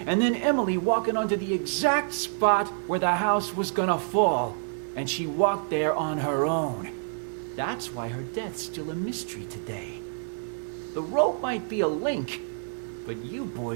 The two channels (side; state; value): left; silent; digital silence